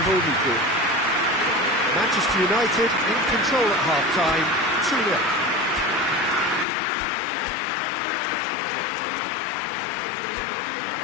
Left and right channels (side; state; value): right; drops out; at 6.7 s